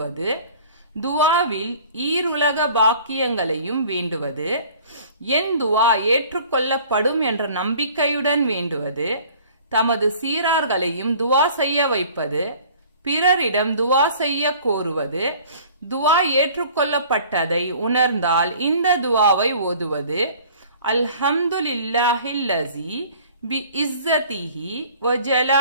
துவாவில் ஈருலக பாக்கியங்களையும் வேண்டுவது, என் துவா ஏற்றுக்கொள்ளப்படும் என்ற நம்பிக்கையுடன் வேண்டுவது, தமது சீரார்களையும் துவா செய்ய வைப்பது, பிறரிடம் துவா செய்ய கோருவது, துவா ஏற்றுக்கொள்ளப்பட்டதை உணர்ந்தால் இந்த துவாவை ஓதுவது, அல்ஹம்துலில்லாஹில்லஸீ பி இஸ்ஸதிஹி வ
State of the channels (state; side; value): inverted; both; correlation -0.49